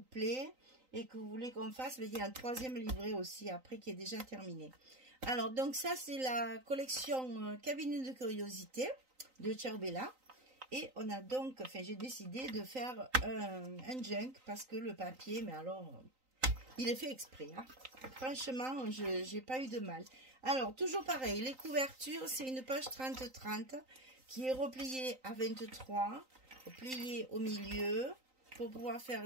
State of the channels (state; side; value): late; left; 3.9 ms